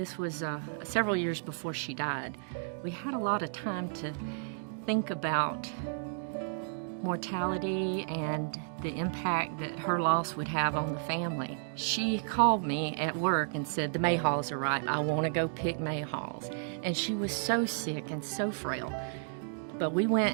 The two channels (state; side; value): silent; left; digital silence